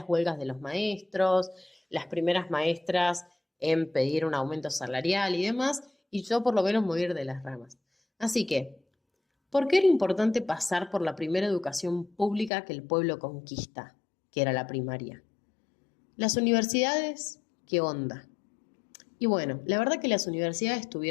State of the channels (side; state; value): right; drops out; at 12.5 s